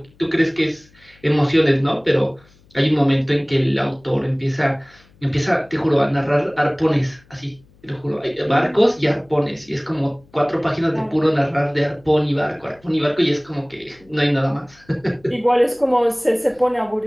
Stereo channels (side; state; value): left; noise; hum, 30 dB below the sound